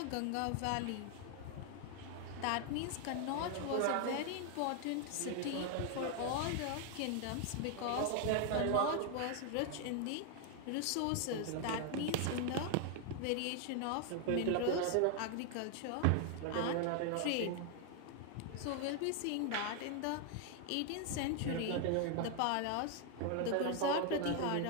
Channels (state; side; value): different; both; correlation 0.00